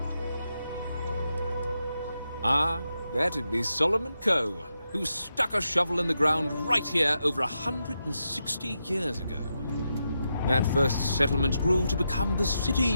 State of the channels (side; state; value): both; inverted; correlation -0.86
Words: Ah, that'd be Solomon Coe, who stuck a shovel in the ground right here over 160 years ago. That first settlement grew to become the city